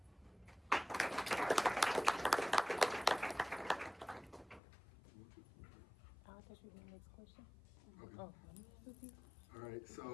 I thought you were the next question. Okay. Oh. All right,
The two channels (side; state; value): right; drops out; at 4.6 s